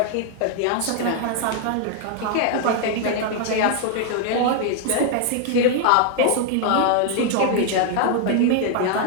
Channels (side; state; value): both; different; correlation 0.00